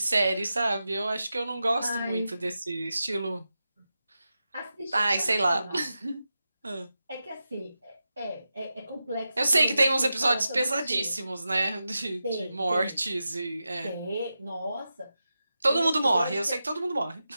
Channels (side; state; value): both; inverted; correlation -0.91